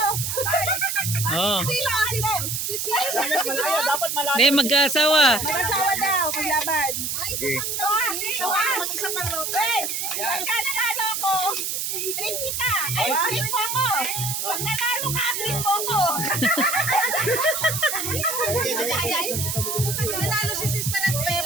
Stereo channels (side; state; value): right; noise; hiss, 2 dB below the sound